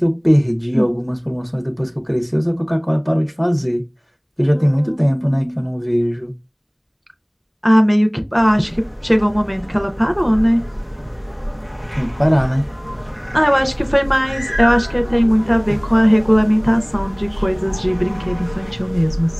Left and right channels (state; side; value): identical; both; correlation 1.00